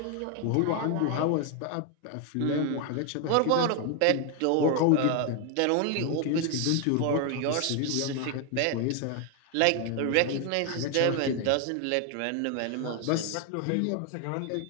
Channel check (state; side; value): different; both; correlation 0.01